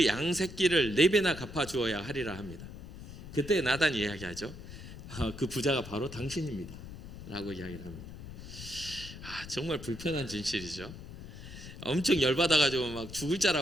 양 새끼를 4배나 갚아 주어야 하리라 합니다. 그때 나단이 이야기하죠. 그 부자가 바로 당신입니다 라고 이야기를 합니다. 정말 불편한 진실이죠. 엄청 열받아가지고 막 죽을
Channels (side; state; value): left; noise; rumble, 13 dB below the sound